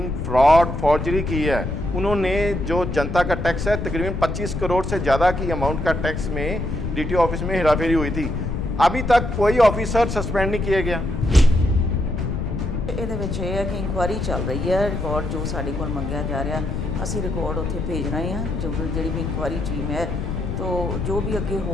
फ्रॉड, फॉर्जरी की है। उन्होंने जो जनता का टैक्स है, तकरीबन 25 करोड़ से ज़्यादा की अमाउंट का टैक्स में डीटीओ ऑफिस में हेराफेरी हुई थी। अभी तक कोई ऑफिसर सस्पेंड नहीं किया गया। ਇਹਦੇ ਵਿੱਚ ਇਹ ਹੈ ਕਿ ਇਨਕੁਆਇਰੀ ਚੱਲ ਰਹੀ ਹੈ। ਰਿਕਾਰਡ ਜੋ ਸਾਡੇ ਕੋਲ ਮੰਗਿਆ ਜਾ ਰਿਹਾ, ਅਸੀਂ ਰਿਕਾਰਡ ਉੱਥੇ ਭੇਜ ਰਹੇ ਹਾਂ। ਜਿਹੜੀ ਵੀ ਇਨਕੁਆਇਰੀ ਟੀਮ ਹੈ, तो जो भी अगे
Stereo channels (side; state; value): left; noise; rumble, 3 dB below the sound